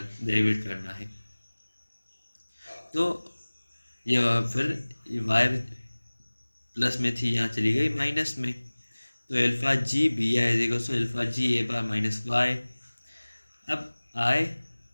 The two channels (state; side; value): inverted; both; correlation -1.00